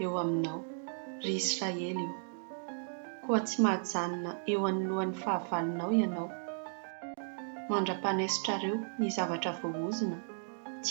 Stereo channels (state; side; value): silent; left; digital silence